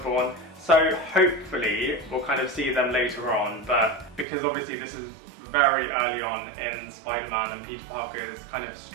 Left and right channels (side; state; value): left; drops out; at 4.2 s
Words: So hopefully we'll kind of see them later on, but because obviously this is very early on in Spider-Man and Peter Parker's kind of